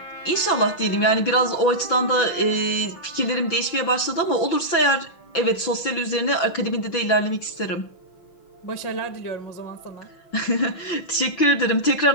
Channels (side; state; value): right; late; 6.0 ms